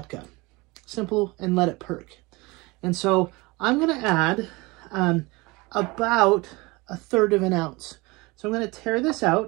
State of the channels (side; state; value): left; quieter; 24.0 dB